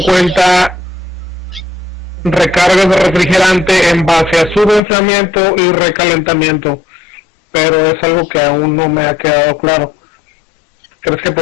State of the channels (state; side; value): drops out; right; at 4.8 s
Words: cuenta recargas de refrigerante en base a su enfriamiento y recalentamiento, pero es algo que aún no me ha quedado claro. Sí, es que es lo ¿Crees que